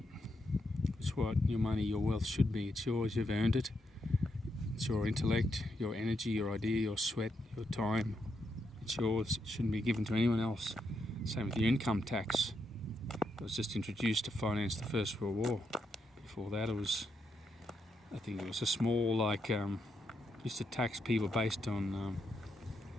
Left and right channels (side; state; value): both; normal; correlation 0.81